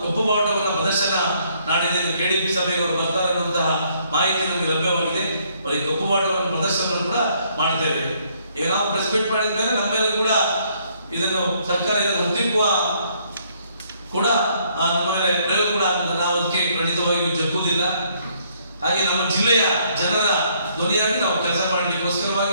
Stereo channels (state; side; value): inverted; both; correlation -0.67